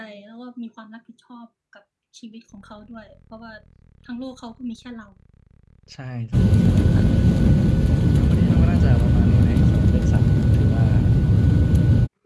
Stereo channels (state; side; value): identical; both; correlation 1.00